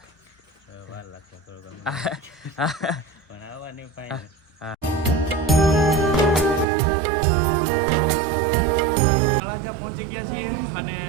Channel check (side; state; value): left; drops out; at 6.7 s